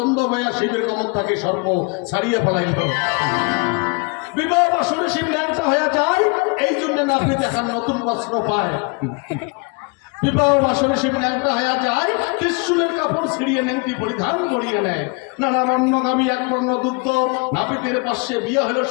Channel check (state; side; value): quieter; right; 31.9 dB